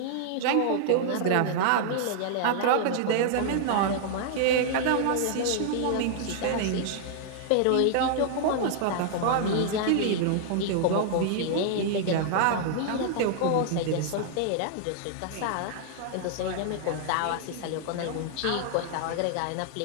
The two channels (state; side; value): different; both; correlation -0.01